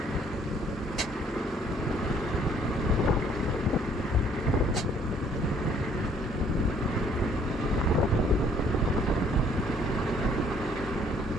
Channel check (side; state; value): both; normal; correlation 0.62